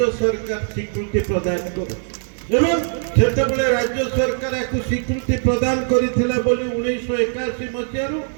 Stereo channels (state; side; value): silent; left; digital silence